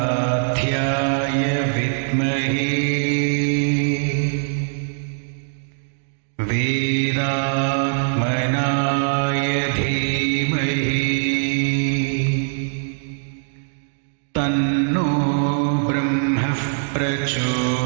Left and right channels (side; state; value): left; silent; digital silence